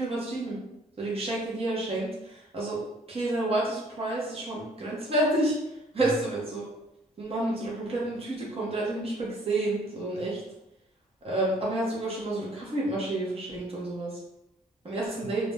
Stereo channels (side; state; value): both; normal; correlation 0.58